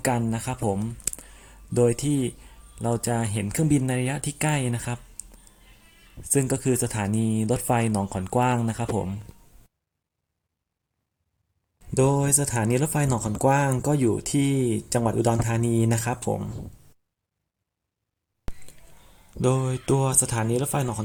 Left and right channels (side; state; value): both; identical; correlation 1.00